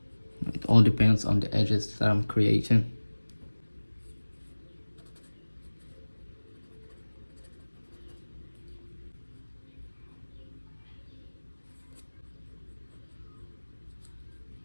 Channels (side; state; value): both; inverted; correlation -1.00